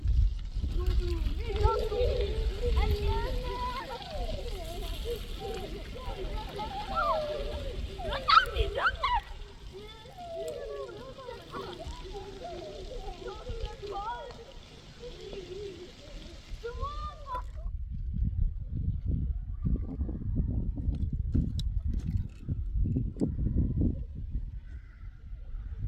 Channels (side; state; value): both; identical; correlation 1.00